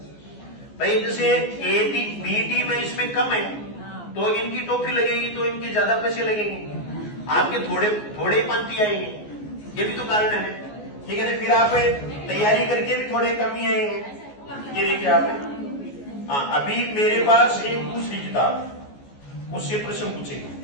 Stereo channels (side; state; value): right; late; 14 ms